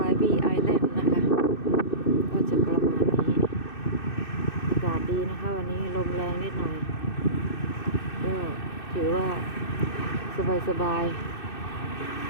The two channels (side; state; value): right; late; 2.6 ms